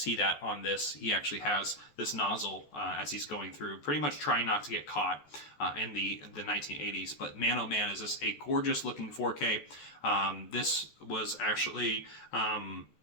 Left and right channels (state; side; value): late; right; 14 ms